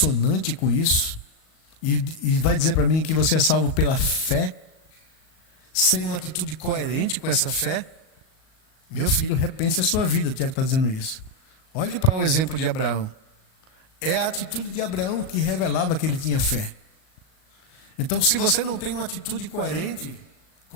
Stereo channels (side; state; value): right; late; 38 ms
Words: com isso, e vai dizer para mim que você é salvo pela fé, sem uma atitude coerente com essa fé? Meu filho, repense a sua vida. O Tiago está dizendo isso. Olhe para o exemplo de Abraão. É a atitude de Abraão que revelava que ele tinha fé. Então, se você não tem uma atitude coerente